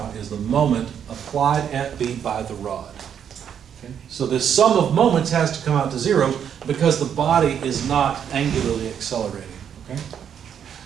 is the moment applied at B by the rod. Okay. So this sum of moments has to come out to 0 because the body is not angularly accelerating. Okay?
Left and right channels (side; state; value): left; quieter; 8.5 dB